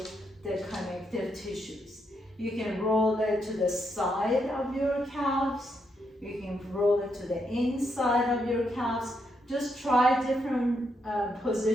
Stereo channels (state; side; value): normal; both; correlation 0.79